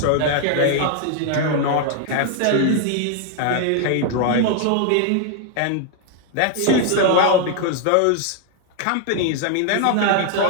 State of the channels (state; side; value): different; both; correlation 0.00